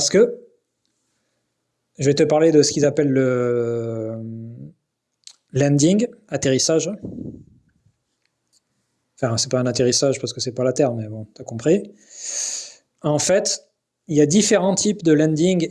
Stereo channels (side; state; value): both; identical; correlation 1.00